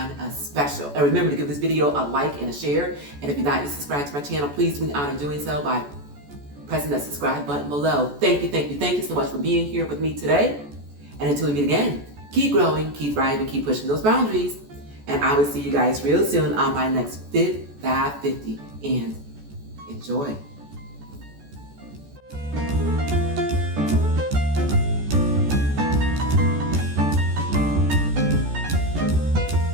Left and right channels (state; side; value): late; left; 14 ms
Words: of special. And remember to give this video a like and a share. And if you're not yet subscribed to my channel, please do me the honor of doing so by pressing that subscribe button below. Thank you so much for being here with me today. And until we meet again, keep growing, keep thriving, keep pushing those boundaries. And I will see you guys real soon on my next Fit 550. And enjoy.